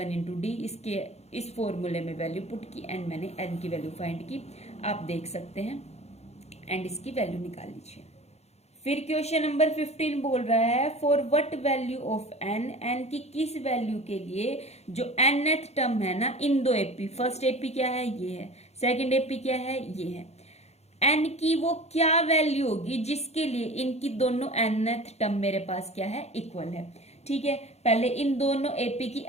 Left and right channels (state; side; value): late; right; 0.31 ms